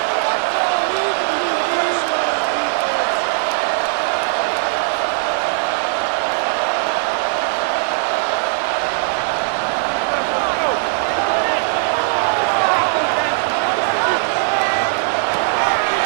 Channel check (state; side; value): silent; left; digital silence